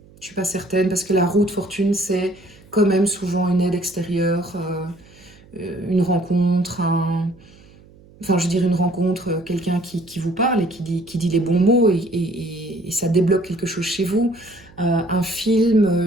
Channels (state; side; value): noise; right; hum, 25 dB below the sound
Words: Je suis pas certaine, parce que la roue de fortune, c'est quand même souvent une aide extérieure, une rencontre, enfin je veux dire une rencontre, quelqu'un qui vous parle et qui dit les bons mots et ça débloque quelque chose chez vous. Un